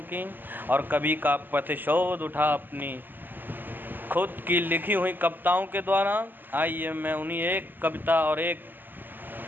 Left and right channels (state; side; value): late; left; 0.091 ms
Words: की, और कवि का प्रतिशोध उठा अपनी खुद की लिखी हुई कविताओं के द्वारा। आइए मैं उन्हीं एक कविता और एक